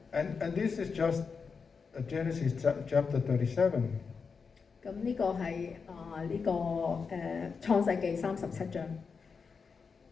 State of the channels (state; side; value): quieter; right; 5.4 dB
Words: And this is just Genesis chapter 37. 咁呢個係創世記37章。